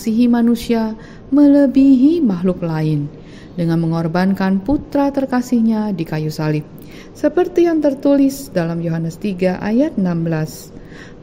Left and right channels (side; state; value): both; identical; correlation 1.00